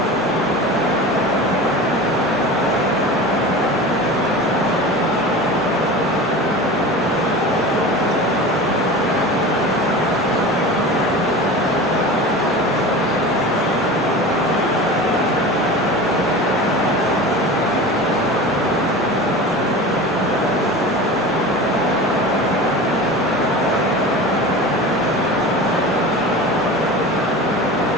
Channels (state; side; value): normal; both; correlation 0.33